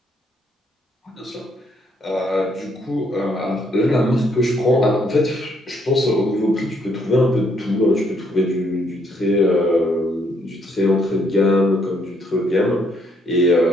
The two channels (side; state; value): both; normal; correlation 0.71